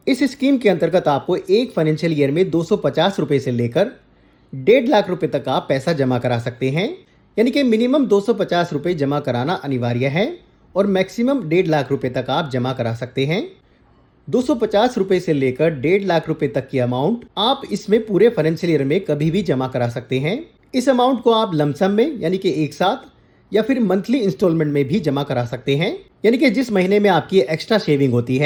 इस स्कीम के अंतर्गत आपको एक फाइनेंशियल ईयर में 250 रुपए से लेकर 1.5 लाख रुपए तक आप पैसा जमा करा सकते हैं, यानी कि मिनिमम 250 रुपए जमा कराना अनिवार्य है और मैक्सिमम 1.5 लाख रुपए तक आप जमा करा सकते हैं। 250 रुपए से लेकर 1.5 लाख रुपए तक की अमाउंट आप इसमें पूरे फाइनेंशियल ईयर में कभी भी जमा करा सकते हैं। इस अमाउंट को आप लमसम में यानी कि एक साथ या फिर मंथली इंस्टॉलमेंट में भी जमा करा सकते हैं, यानी कि जिस महीने में आपकी एक्स्ट्रा सेविंग होती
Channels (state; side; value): identical; both; correlation 1.00